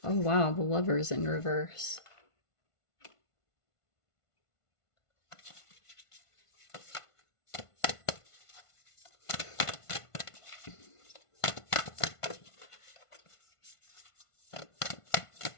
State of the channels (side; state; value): right; late; 1.5 ms